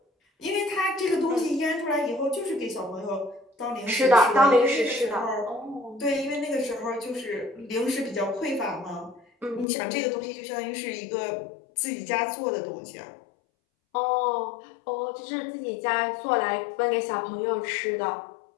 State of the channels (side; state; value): right; drops out; at 9.7 s